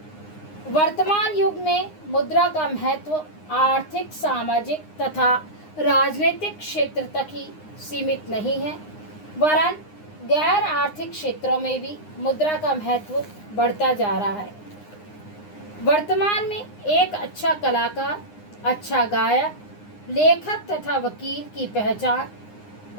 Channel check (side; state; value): right; late; 9.7 ms